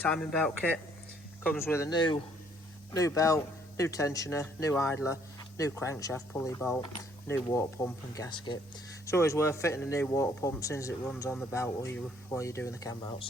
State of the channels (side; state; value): both; normal; correlation 0.64